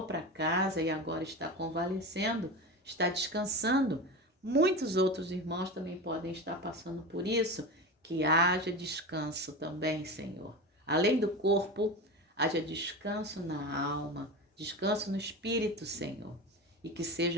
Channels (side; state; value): both; normal; correlation 0.25